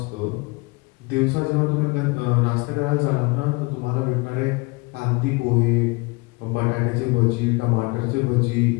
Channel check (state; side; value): quieter; right; 26.7 dB